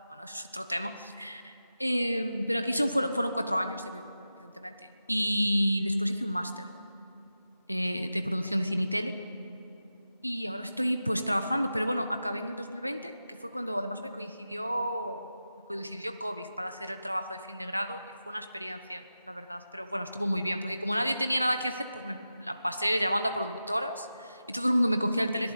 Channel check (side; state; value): both; inverted; correlation -0.92